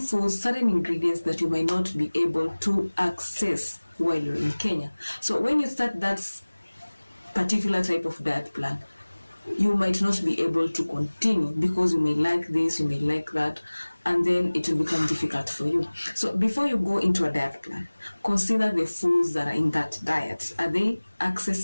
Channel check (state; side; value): inverted; both; correlation -1.00